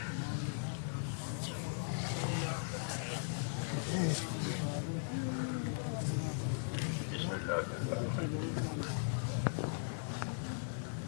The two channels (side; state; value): right; silent; digital silence